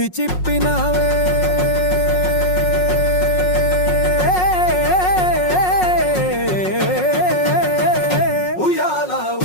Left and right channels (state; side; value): late; right; 5.5 ms